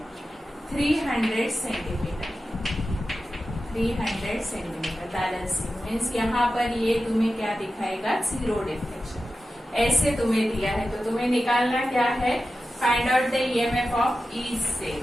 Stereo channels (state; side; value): normal; both; correlation 0.93